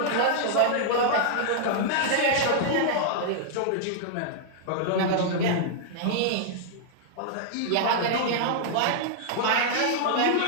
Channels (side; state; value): both; different; correlation -0.01